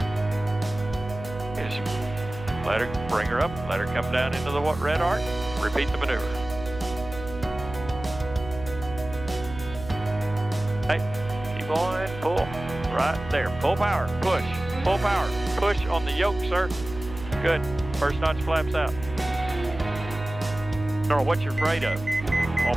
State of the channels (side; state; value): right; noise; hum, 12 dB below the sound